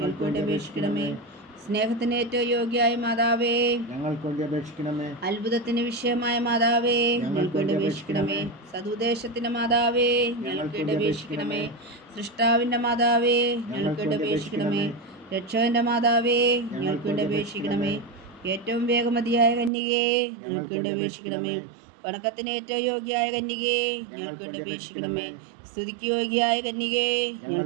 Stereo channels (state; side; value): drops out; left; at 19.7 s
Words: വേണ്ടി അപേക്ഷിക്കണമേ. സ്നേഹത്തിന് ഏറ്റവും യോഗ്യയായ മാതാവേ, ഞങ്ങൾക്ക് വേണ്ടി അപേക്ഷിക്കണമേ. അത്ഭുതത്തിന് വിഷയമായ മാതാവേ, ഞങ്ങൾക്ക് വേണ്ടി അപേക്ഷിക്കണമേ. സതുദ്ദേശത്തിന്റെ മാതാവേ, ഞങ്ങൾക്ക് വേണ്ടി അപേക്ഷിക്കണമേ. സൃഷ്ടാവിന്റെ മാതാവേ, ഞങ്ങൾക്ക് വേണ്ടി അപേക്ഷിക്കണമേ. രക്ഷകന്റെ മാതാവേ, ഞങ്ങൾക്ക് വേണ്ടി അപേക്ഷിക്കണമേ. ഏറ്റവും വേഗമതിയായ കന്യകയെ, ഞങ്ങൾക്ക് വേണ്ടി അപേക്ഷിക്കണമേ. വണക്കത്തിന് ഏറ്റവും യോഗ്യയായ കന്യകേ, ഞങ്ങൾക്ക് വേണ്ടി അപേക്ഷിക്കണമേ. സ്തുതിക്ക് യോഗ്യയായ കന്യകേ,